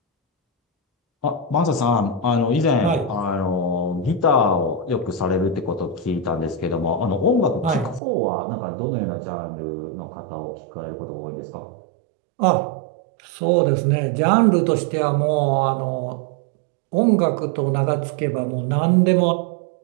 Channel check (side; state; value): left; drops out; at 8.0 s